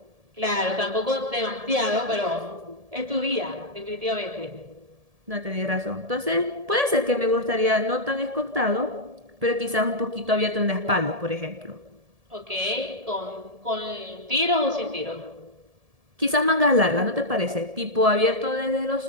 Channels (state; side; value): late; left; 1.7 ms